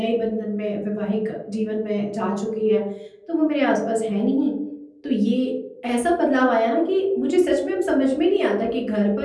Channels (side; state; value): both; identical; correlation 1.00